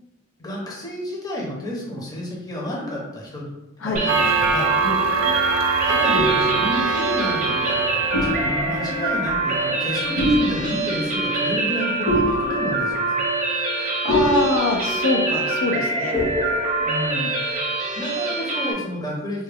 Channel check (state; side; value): normal; both; correlation 0.17